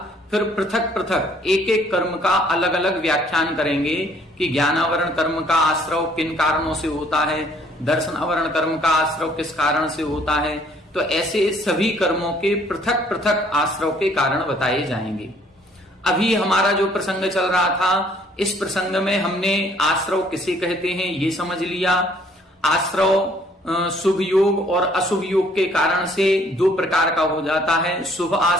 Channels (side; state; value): both; normal; correlation 0.61